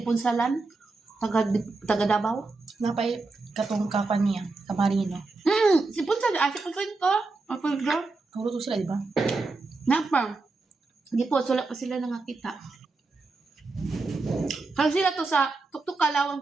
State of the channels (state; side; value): quieter; left; 3.6 dB